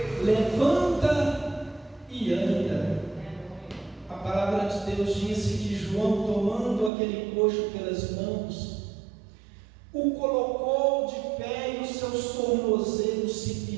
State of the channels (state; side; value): drops out; left; at 6.9 s